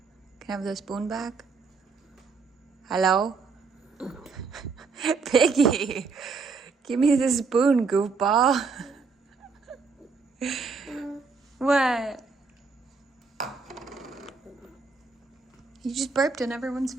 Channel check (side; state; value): left; quieter; 4.7 dB